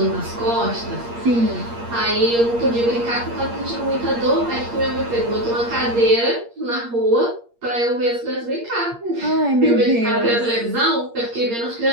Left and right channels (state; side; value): late; left; 8.6 ms